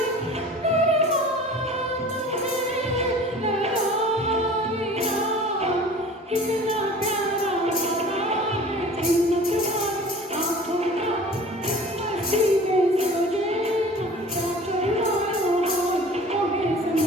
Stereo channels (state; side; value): normal; both; correlation 0.44